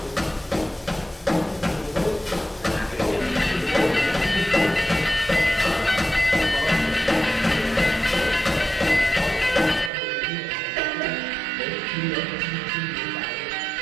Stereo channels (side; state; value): left; drops out; at 9.9 s